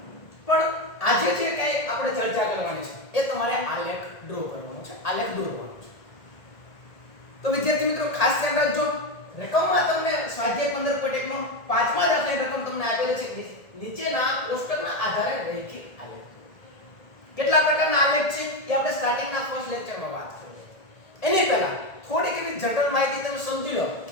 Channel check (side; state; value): right; late; 1.7 ms